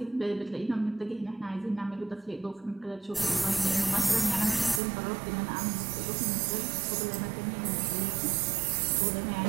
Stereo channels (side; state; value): left; drops out; at 4.8 s